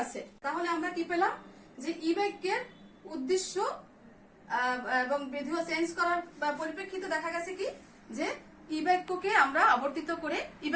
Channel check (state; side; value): identical; both; correlation 1.00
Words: আছে। তাহলে আমরা কি পেলাম যে ই বাক্যের উদ্দেশ্য এবং বিধেয় চেঞ্জ করার পরিপ্রেক্ষিতে দেখা গেছে কি যে ই বাক্যকে আমরা আবর্তিত করে ই